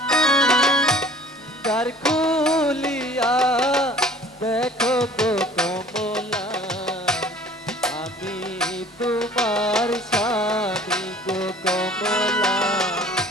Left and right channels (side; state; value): both; normal; correlation 0.49